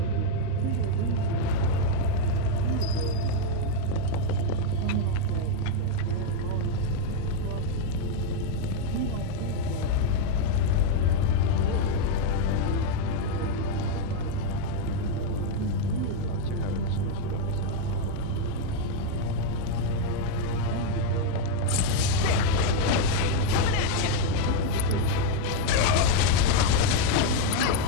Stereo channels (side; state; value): both; different; correlation 0.01